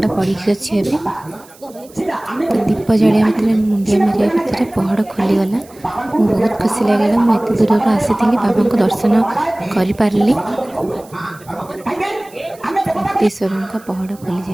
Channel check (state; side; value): noise; right; hiss, 25 dB below the sound